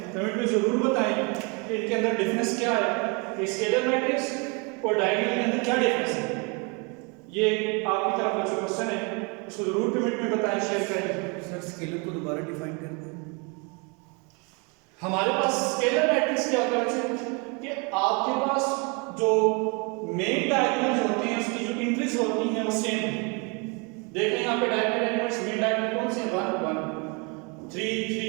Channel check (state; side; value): quieter; left; 32.0 dB